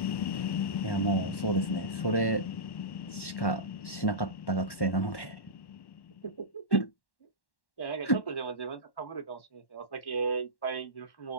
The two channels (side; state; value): right; late; 1.1 ms